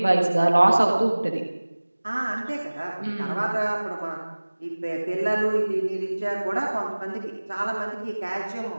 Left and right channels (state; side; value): inverted; both; correlation -1.00